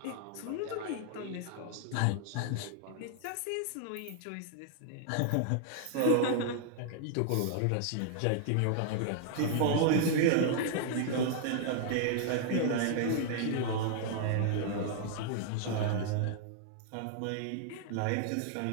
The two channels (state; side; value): different; both; correlation -0.01